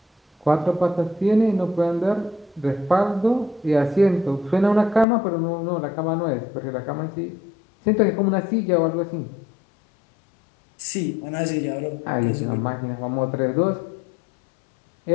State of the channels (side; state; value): right; drops out; at 5.1 s